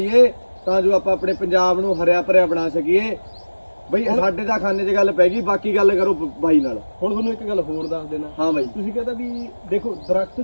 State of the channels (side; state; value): both; inverted; correlation -1.00